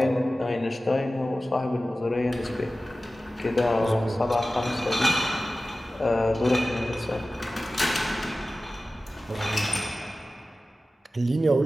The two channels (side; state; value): both; normal; correlation 0.96